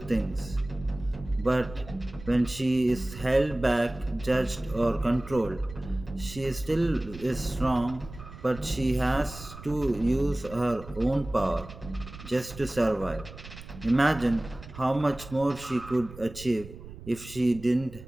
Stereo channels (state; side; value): noise; right; rumble, 15 dB below the sound